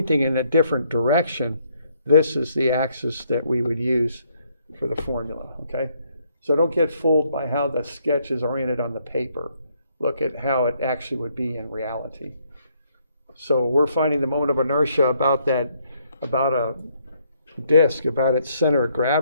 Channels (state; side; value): inverted; both; correlation -0.70